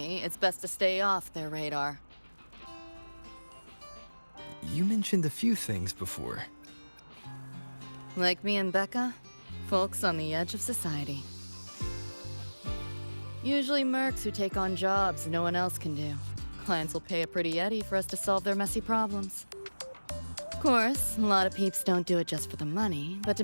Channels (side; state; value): both; inverted; correlation -1.00